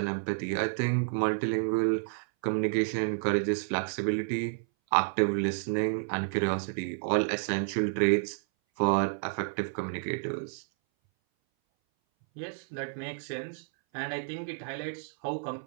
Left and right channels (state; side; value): silent; left; 58 dB below the other